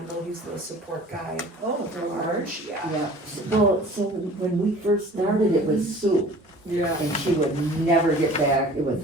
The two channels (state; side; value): normal; both; correlation 0.46